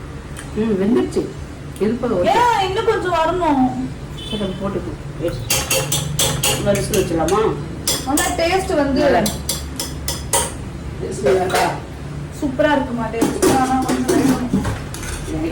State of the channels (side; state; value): both; identical; correlation 1.00